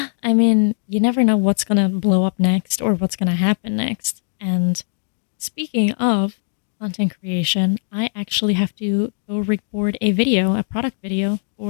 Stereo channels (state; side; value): silent; right; digital silence